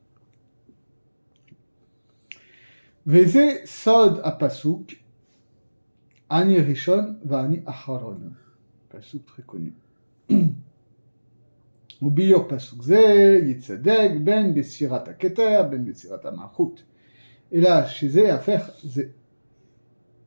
Veze sod apasuk, ani rishon vani acharon. Pasuk très connu. וביור פסוק זה יצדק בין בסירת הכתר בין בסירת המלכות, אלא שזה יהפך זה.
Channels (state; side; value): inverted; both; correlation -1.00